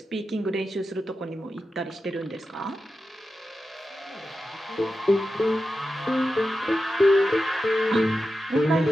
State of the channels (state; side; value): normal; both; correlation 0.91